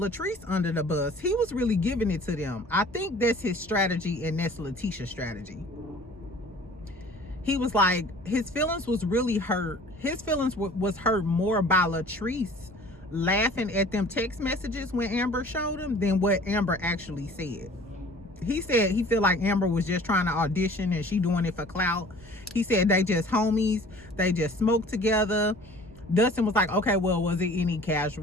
under the bus. He was really giving it to them. I think that's his strategy, and that's Letitia's strategy. He was like, his feelings was really hurt. His feelings was hurt more by Latrice laughing at them text messages when Amber showed him than what Amber actually said. He said he feel like Amber was just trying to audition and she doing it for clout. He said they just homies. They just smoked together. Dustin was like, okay, well, was it any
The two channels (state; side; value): normal; both; correlation 0.48